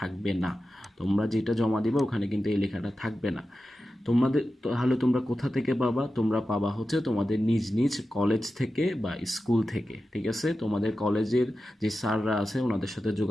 না। তোমরা যেটা জমা দিবে ওখানে কিন্তু এই লেখাটা থাকবে না। তোমাদের তাহলে তোমরা কোথা থেকে পাবা? তোমরা পাবা হচ্ছে তোমাদের নিজ নিজ কলেজ থেকে বা স্কুল থেকে। ঠিক আছে, তোমাদের কলেজের যে স্যাররা আছে ওনাদের সাথে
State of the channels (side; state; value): both; normal; correlation 0.92